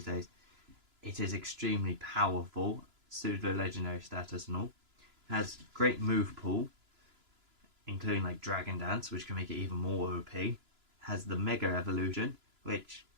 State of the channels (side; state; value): left; late; 3.0 ms